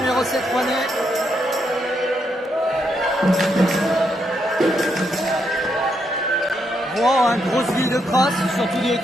7 Rouennais. Rouen, hein, grosse ville de cross, surtout du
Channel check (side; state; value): both; normal; correlation 0.78